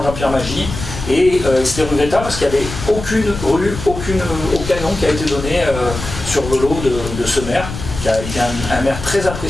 Jean-Pierre Magie. Et c'était regrettable parce qu'il n'y avait aucune rue, aucun nom qui a été donné sur Velo de ce maire, qui a été un maire très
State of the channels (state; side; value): noise; left; rumble, 9 dB below the sound